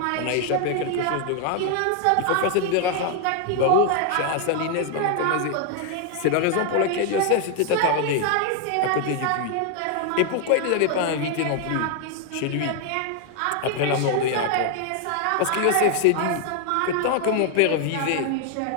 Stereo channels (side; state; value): both; different; correlation 0.00